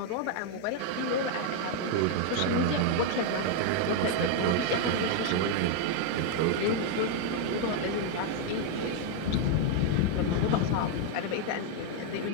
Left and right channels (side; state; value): both; different; correlation 0.01